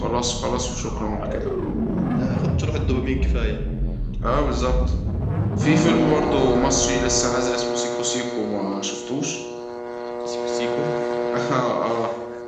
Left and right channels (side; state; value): both; identical; correlation 1.00